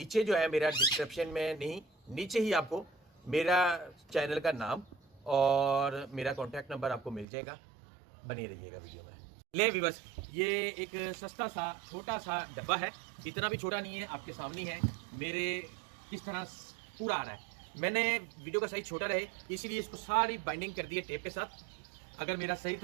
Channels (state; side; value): drops out; left; at 7.2 s